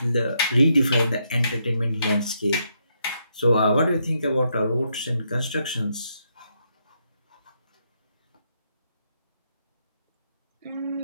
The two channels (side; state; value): both; inverted; correlation -0.78